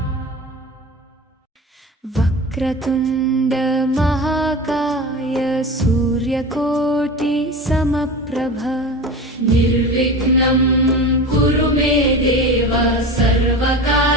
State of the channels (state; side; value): normal; both; correlation 0.30